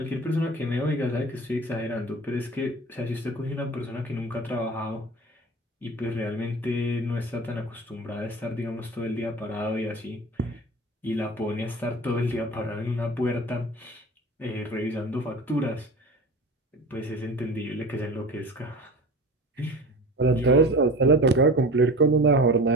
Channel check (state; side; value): normal; both; correlation 0.35